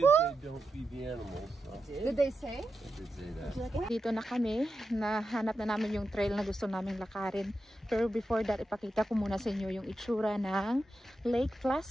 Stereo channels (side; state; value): both; normal; correlation 0.89